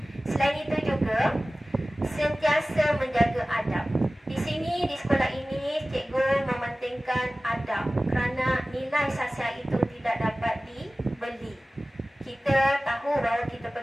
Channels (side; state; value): both; normal; correlation 0.97